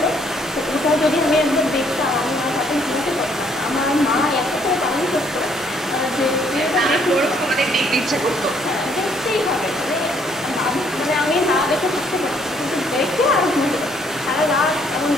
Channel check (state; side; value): normal; both; correlation 0.66